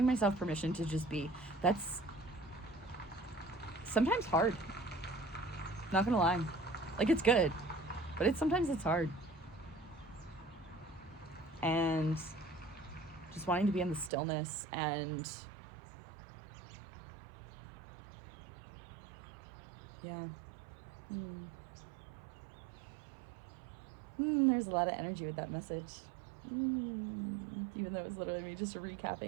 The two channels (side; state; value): left; drops out; at 14.1 s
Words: myself permission to just be. That's sometimes hard. Not gonna lie. Like it's good, but sometimes it's hard. And just wanting to be in the stillness, and yeah. There's a lot of energy with that message. Even though it was literally me just